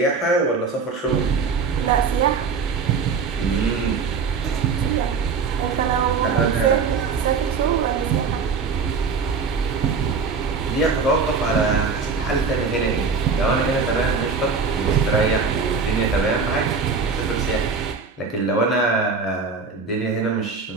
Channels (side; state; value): left; quieter; 5.1 dB